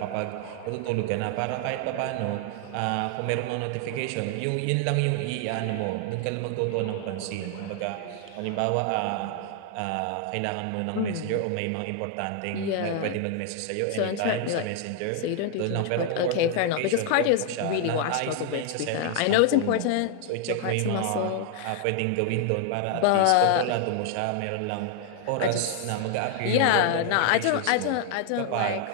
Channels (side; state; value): both; different; correlation 0.00